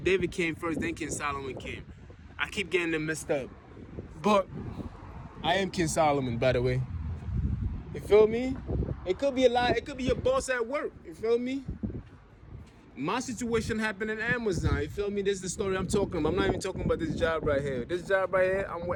came first, then King Solomon came. I keep getting them messed up. But I am King Solomon, by the way. You feel me? It could be a lie. It could be your boss at work. You feel me? My situation happened in Amazon. You feel me? This is the story I'm talking about. I'm not even talking about this job right here. This job right here,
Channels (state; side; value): identical; both; correlation 1.00